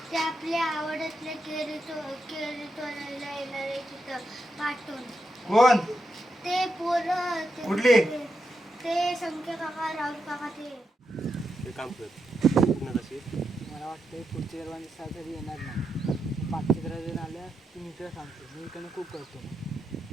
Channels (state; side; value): normal; both; correlation 0.85